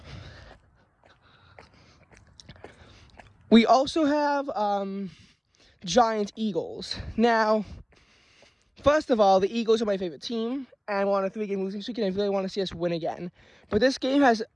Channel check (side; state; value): both; identical; correlation 1.00